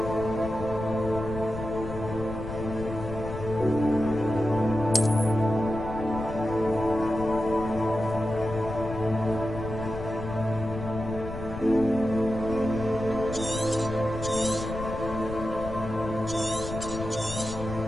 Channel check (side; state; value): left; noise; rumble, 9 dB below the sound